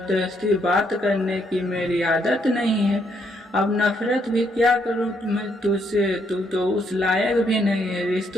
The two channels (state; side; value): normal; both; correlation 0.73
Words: बात करने की मेरी आदत नहीं है। अब नफरत भी क्या करूँ मैं तुझसे, तू तो उस लायक भी नहीं है।